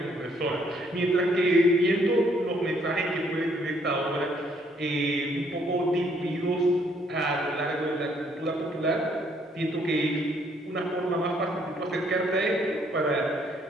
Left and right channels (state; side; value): normal; both; correlation 0.67